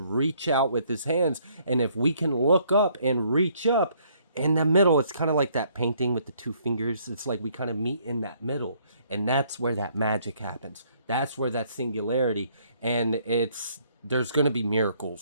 reach out with his hands. And if we can look up and reach up in the middle, it's kind of like that painting with the two fingers. It's like we kind of meet in that middle, and that's where that magic happens. That's where that singularity, and there's going to be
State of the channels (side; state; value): both; inverted; correlation -0.66